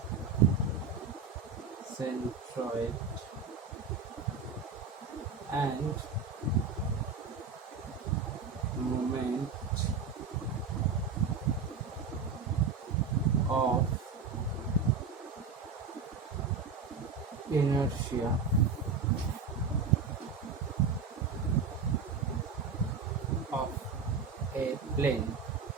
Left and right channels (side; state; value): left; quieter; 5.1 dB